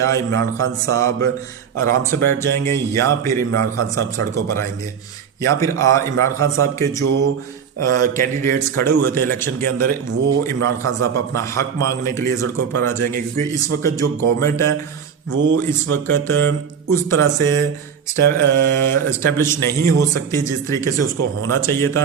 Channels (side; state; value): left; quieter; 7.2 dB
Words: इमरान खान साहब आराम से बैठ जाएंगे या फिर इमरान खान साहब सड़कों पर आएंगे, या फिर इमरान खान साहब के जो कैंडिडेट्स खड़े हुए थे इलेक्शन के अंदर वो इमरान खान साहब अपना हक मांगने के लिए सड़कों पर आ जाएंगे। क्योंकि इस वक्त जो गवर्नमेंट है वो इस वक्त उस तरह से इस्टेब्लिश नहीं हो सकती जिस तरीके से उसको होना चाहिए था।